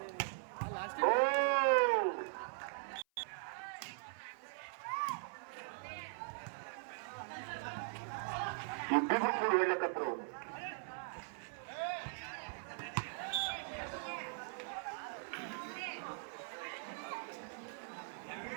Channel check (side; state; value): left; silent; 51 dB below the other